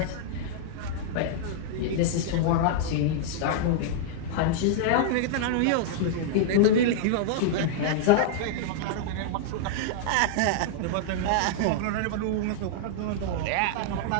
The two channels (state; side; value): different; both; correlation -0.01